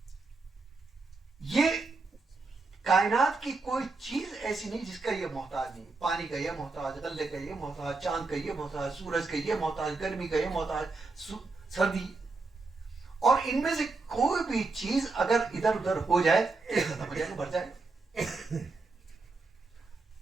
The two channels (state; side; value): quieter; left; 3.8 dB